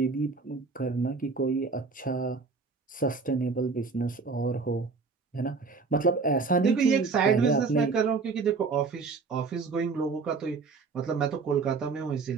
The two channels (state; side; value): quieter; left; 4.6 dB